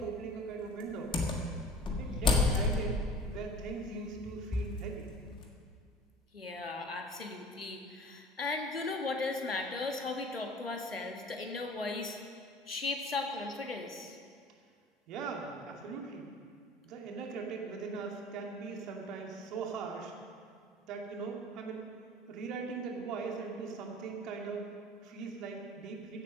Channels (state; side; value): normal; both; correlation 0.44